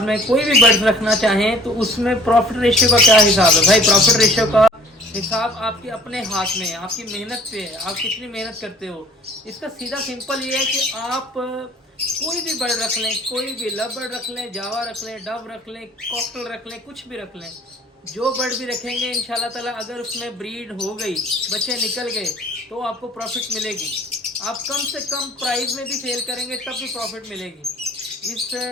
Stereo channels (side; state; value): both; normal; correlation 0.51